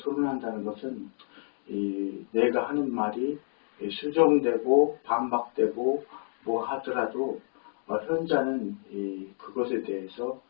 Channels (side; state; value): right; silent; digital silence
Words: 것은 내가 하는 말이 수정되고 반박되고 뭐 하더라도 현자는 그것에 대해서